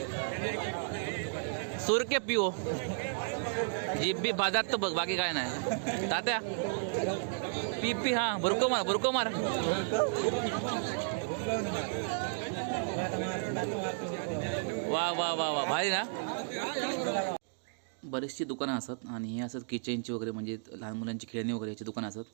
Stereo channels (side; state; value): left; silent; digital silence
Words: सूर के पिओ जीप बी बाजात तर बघ बाकी काय नाही तात्या पी पी हा बुरको मार वा वा वा वा भारी ना. बरीचशी दुकानं असतात आणि हे असतात किचनची वगैरे म्हणजे लहान मुलांची खेळणी वगैरे याची दुकानं असतात.